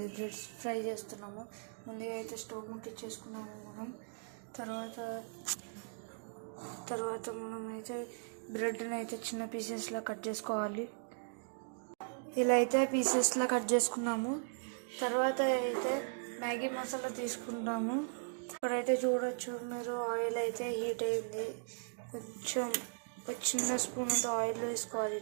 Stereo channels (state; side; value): silent; left; digital silence